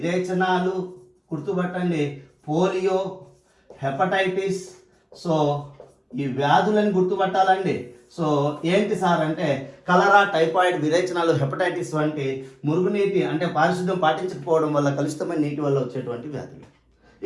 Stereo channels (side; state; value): both; identical; correlation 1.00